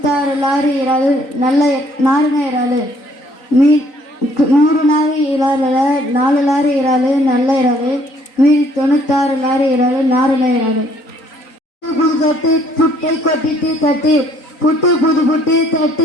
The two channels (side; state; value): right; late; 3.9 ms